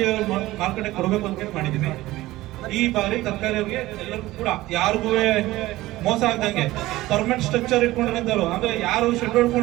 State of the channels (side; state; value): left; quieter; 17.5 dB